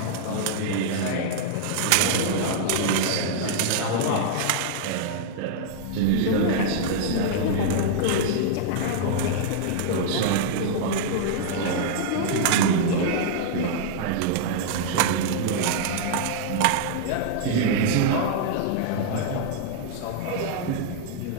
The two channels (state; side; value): different; both; correlation -0.01